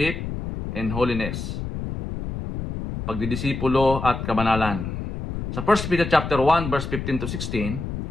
and Holiness. Pagdidisipulo at kabanalan. Sa 1 Peter chapter 1 verse 15 to 16,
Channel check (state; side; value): noise; left; rumble, 6 dB below the sound